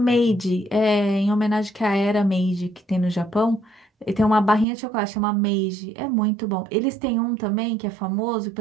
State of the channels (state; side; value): drops out; left; at 4.7 s